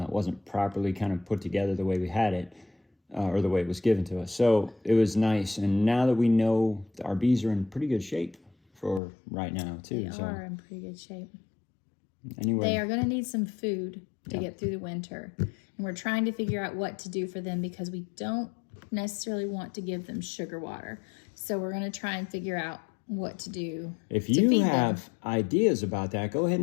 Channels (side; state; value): right; drops out; at 9.0 s